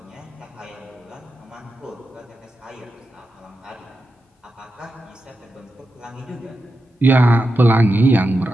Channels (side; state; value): both; normal; correlation 0.89